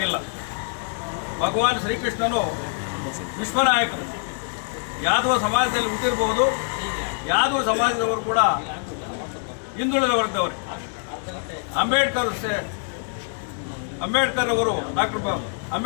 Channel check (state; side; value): silent; right; 62 dB below the other